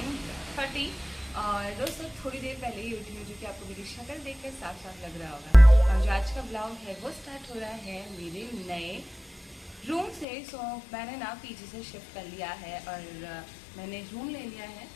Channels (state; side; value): drops out; right; at 10.2 s